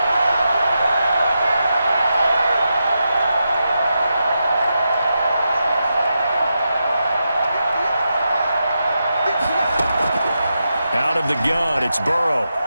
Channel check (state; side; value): inverted; both; correlation -0.87